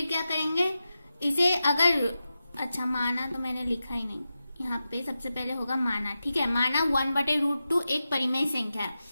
क्या करेंगे इसे, अगर अच्छा माना तो मैंने लिखा ही नहीं, यहाँ पे सबसे पहले होगा माना। ठीक है, माना 1/√2 एक परिमेय संख्या है।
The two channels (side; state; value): both; inverted; correlation -0.92